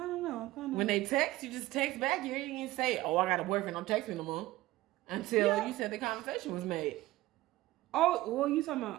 know. I'm kind of When they text, you just text back. You ain't even say, oh, I got a boyfriend. I'm texting no more. Until you said the conversation was made. oh well, you talking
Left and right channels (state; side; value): quieter; left; 17.4 dB